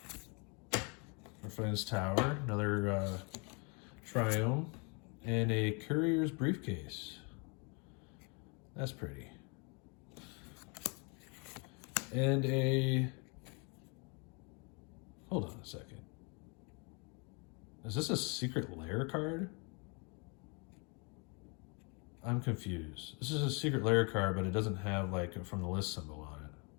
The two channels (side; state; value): right; quieter; 33.6 dB